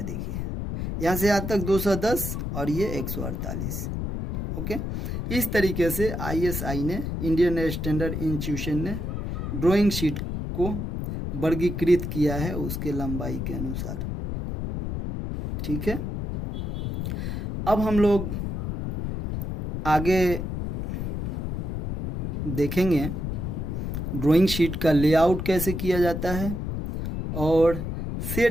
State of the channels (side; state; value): left; noise; rumble, 4 dB below the sound